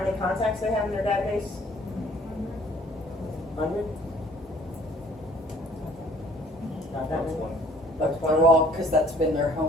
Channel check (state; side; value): normal; both; correlation 0.56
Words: many contacts they have in their database? 100? Not that many? But they're all, because that's been their